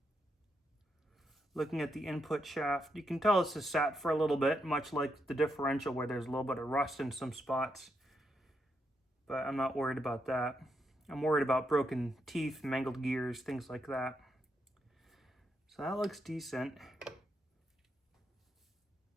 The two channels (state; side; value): normal; both; correlation 0.81